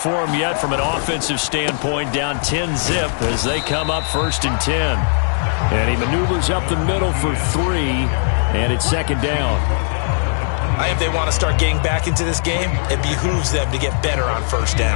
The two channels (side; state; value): right; silent; 59 dB below the other